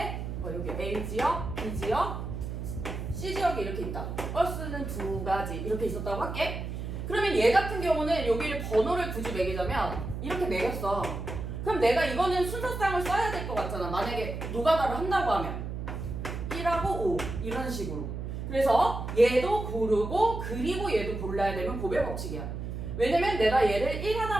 여기 A지역, B지역, C지역이 이렇게 있다. 버스는 2가지 이렇게 있었다고 할게. 그러면 얘 같은 경우는 여기를 번호를 굳이 매기자면 이렇게 매겼어. 그럼 내가 이거는 순서상을 써야 될 것 같잖아. 만약에 노가다를 한다고 하면 1하고 5 이런 식으로. 그래서 얘도 고르고 그리고 얘도 골라야 되면 고백 법칙이야. 왜냐면 내가 얘를 1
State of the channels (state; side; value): noise; right; hum, 5 dB below the sound